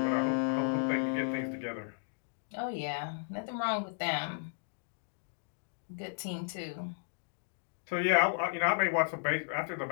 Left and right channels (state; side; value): silent; right; digital silence